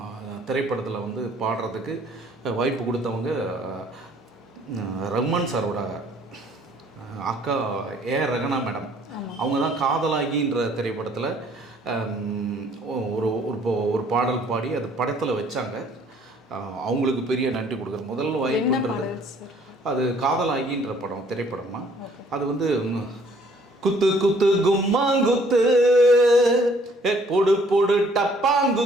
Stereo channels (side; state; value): both; normal; correlation 0.60